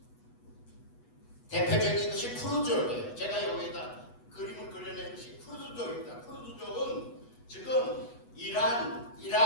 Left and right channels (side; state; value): right; late; 8.2 ms